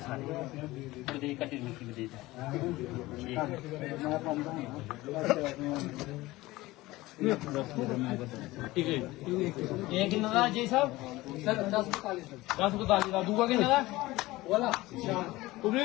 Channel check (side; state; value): right; quieter; 19.0 dB